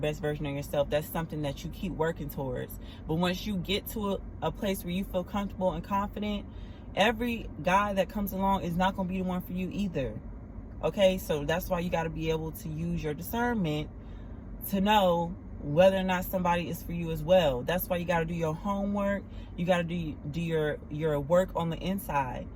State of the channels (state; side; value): identical; both; correlation 1.00